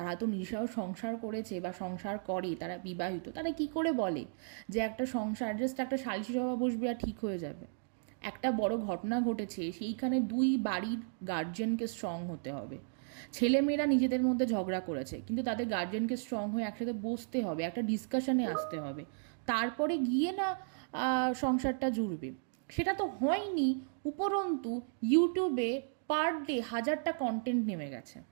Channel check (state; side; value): silent; left; digital silence